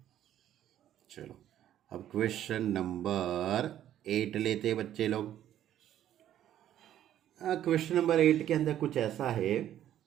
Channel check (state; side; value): quieter; left; 11.5 dB